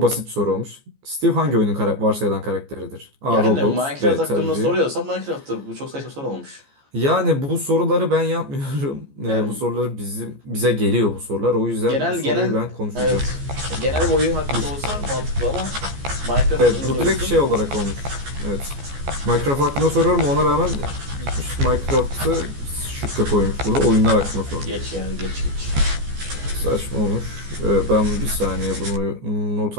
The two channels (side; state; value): left; late; 14 ms